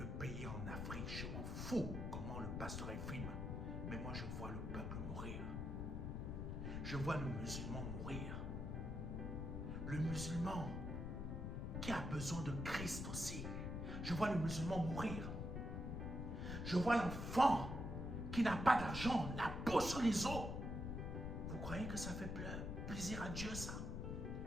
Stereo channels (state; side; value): noise; left; rumble, 3 dB below the sound